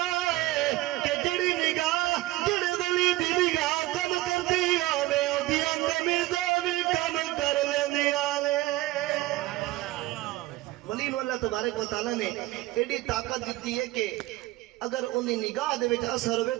ہے کہ جڑی نگاہ جڑے ولی دی نگاہ کم کردی ہوے اودیاں قمیضاں وی کم کر لیندیاں نے ولی نو اللہ تبارک و تعالی نے ایڈی طاقت دتی ہے کہ اگر انہیں نگاہ دے وچ اثر ہوئے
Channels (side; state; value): left; quieter; 18.1 dB